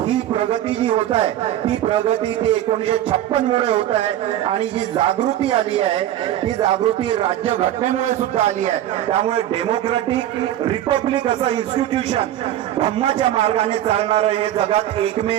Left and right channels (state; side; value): quieter; left; 12.4 dB